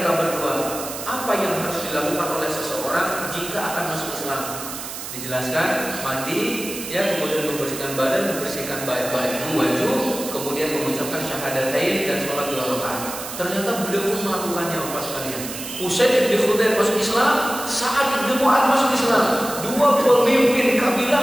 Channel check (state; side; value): noise; right; hiss, 9 dB below the sound